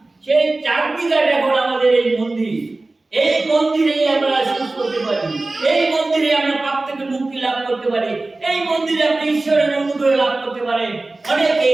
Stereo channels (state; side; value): quieter; left; 3.1 dB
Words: সেই চাঁদনি ঘাট এখন আমাদের এই মন্দির। এই মন্দিরেই আমরা সুস্থ হতে পারি, এই মন্দিরে আমরা পাপ থেকে মুক্তি লাভ করতে পারি, এই মন্দিরে আপনি ঈশ্বরের অনুগ্রহ লাভ করতে পারেন।